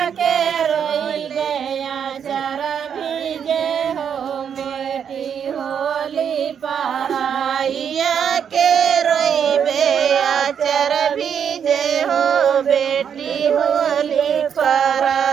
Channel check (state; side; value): quieter; left; 7.9 dB